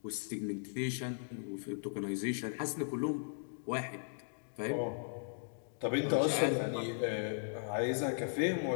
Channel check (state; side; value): silent; right; digital silence